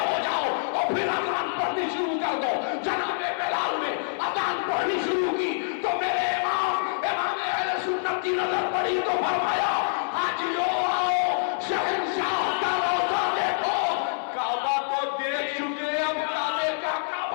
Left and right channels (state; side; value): silent; right; 55 dB below the other